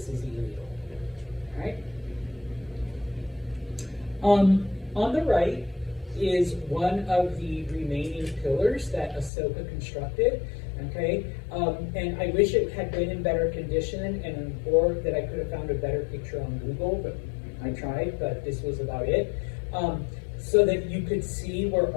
is illegal, all right? On the right is one of the remaining pillars that Ahsoka constructed, okay? And I wish it had been in better condition or that I could have found a better picture on Google, but I tried, but this was about it. So that you could see where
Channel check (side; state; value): right; drops out; at 9.3 s